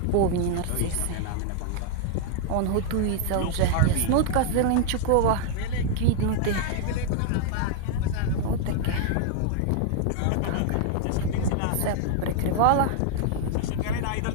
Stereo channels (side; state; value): both; different; correlation 0.00